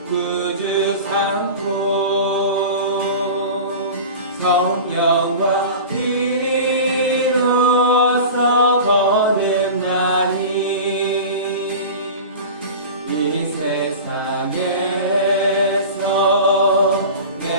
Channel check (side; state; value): both; inverted; correlation -0.34